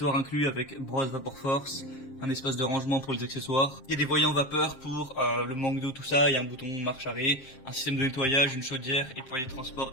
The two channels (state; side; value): late; right; 7.5 ms